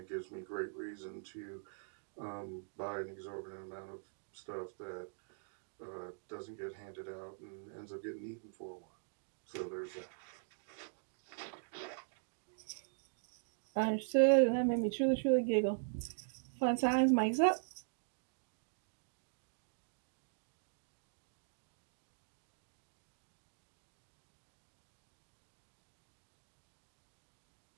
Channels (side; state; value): left; silent; digital silence